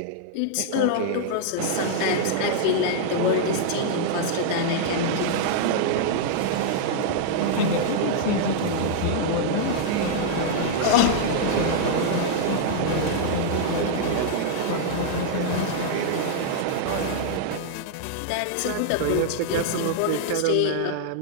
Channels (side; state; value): both; different; correlation -0.01